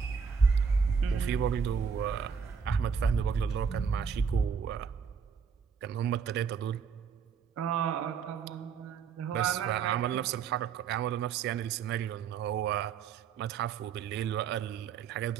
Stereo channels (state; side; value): quieter; left; 6.4 dB